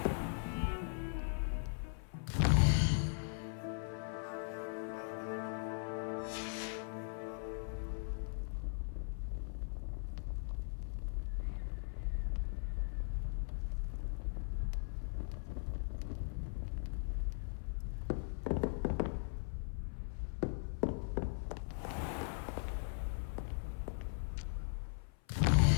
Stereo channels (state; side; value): silent; right; 51 dB below the other